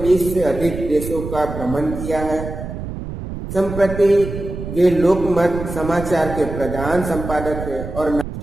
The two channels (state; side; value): noise; right; rumble, 8 dB below the sound